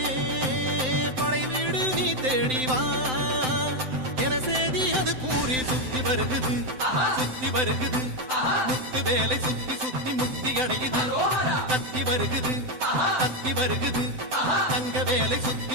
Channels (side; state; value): left; late; 7.8 ms